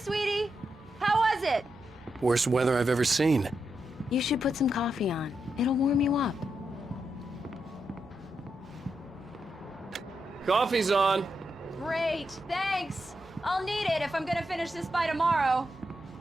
How was it? Worst weather I've ever seen. You should put some coffee on. It'll warm you up. Coffee's on. Great, thanks. I'll need it if I'm gonna finish this by tomorrow.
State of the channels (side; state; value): both; normal; correlation 0.84